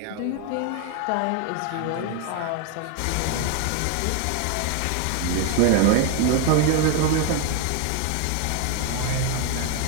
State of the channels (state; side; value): different; both; correlation 0.01